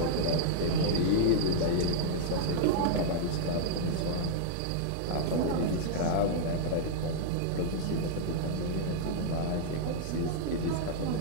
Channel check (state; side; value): different; both; correlation -0.01